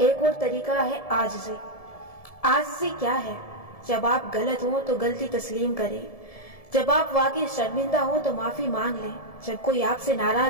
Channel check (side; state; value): right; late; 1.7 ms